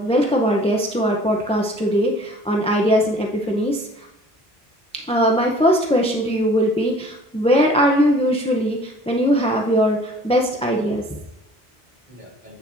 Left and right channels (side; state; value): both; normal; correlation 0.51